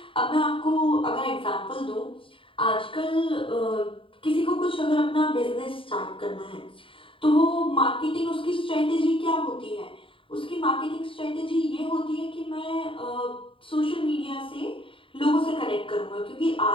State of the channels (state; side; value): late; right; 0.25 ms